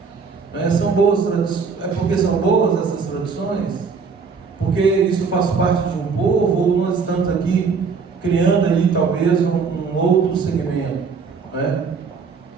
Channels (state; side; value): quieter; left; 5.3 dB